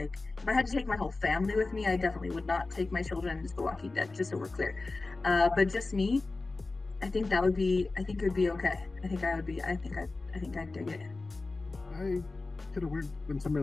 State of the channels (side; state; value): right; quieter; 3.5 dB